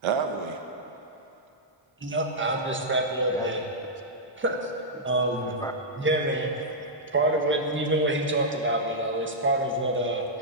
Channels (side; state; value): both; normal; correlation -0.09